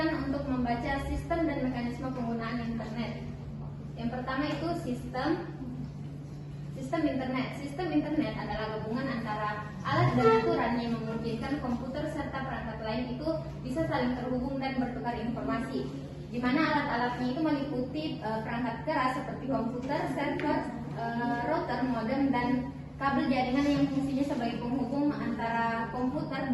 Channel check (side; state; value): both; identical; correlation 1.00